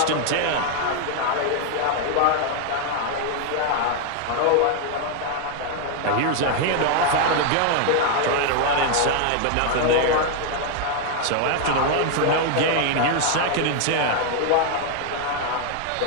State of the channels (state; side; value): different; both; correlation 0.00